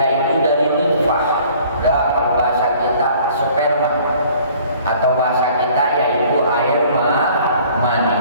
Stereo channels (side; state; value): both; inverted; correlation -0.54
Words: dari nutfah. Kalau bahasa kita sperma, atau bahasa kita yaitu air mani.